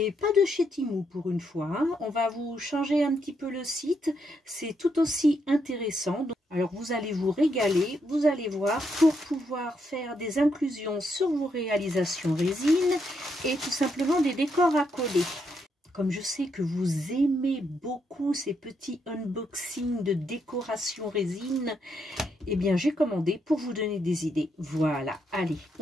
pas de chez Temu pour une fois, hein. On va vous changer un petit peu le site, c'est tout aussi intéressant. Alors vous allez vous régaler, vous allez voir, pour pouvoir faire des inclusions sur vos réalisations résine et tout simplement des décors à coller. Comme je sais que vous aimez beaucoup ces petits unboxings de décoration résine, eh bien j'ai commandé pour vous donner des idées. Voilà, allez,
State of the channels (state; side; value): normal; both; correlation 0.78